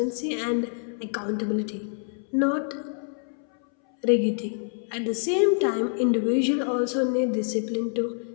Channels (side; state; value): right; silent; 61 dB below the other